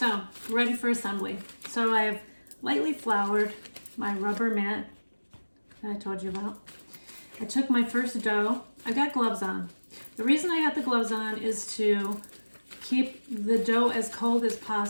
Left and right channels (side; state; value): both; inverted; correlation -1.00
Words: ready for assembly. So I have lightly floured my rubber mat that I told you about. I took my first dough. I got gloves on. The reason I got the gloves on is to keep the dough as cold as